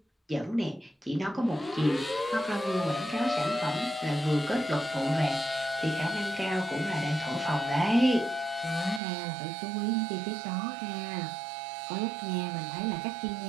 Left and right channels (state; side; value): drops out; left; at 9.0 s